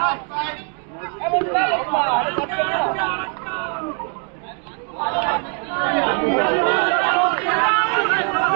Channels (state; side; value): quieter; left; 39.8 dB